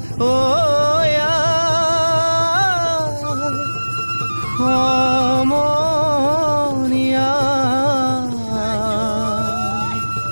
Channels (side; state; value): both; inverted; correlation -1.00